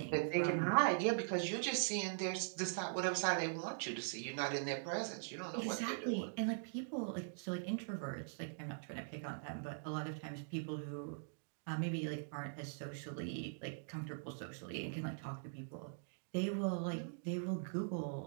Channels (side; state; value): left; silent; digital silence